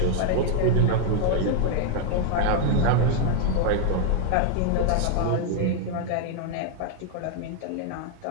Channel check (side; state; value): both; different; correlation 0.00